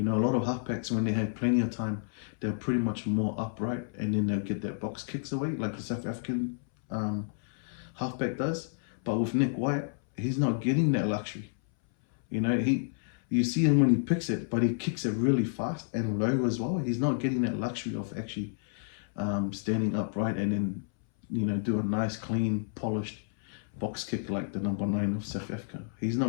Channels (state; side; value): silent; right; 58 dB below the other